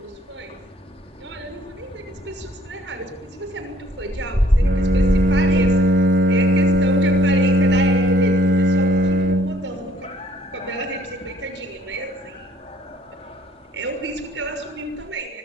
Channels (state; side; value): normal; both; correlation 0.61